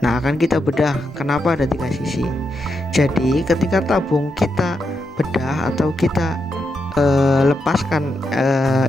akan kita bedah kenapa ada 3 sisi. Jadi ketika tabung kita bedah atau kita lepaskan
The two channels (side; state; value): both; normal; correlation 0.84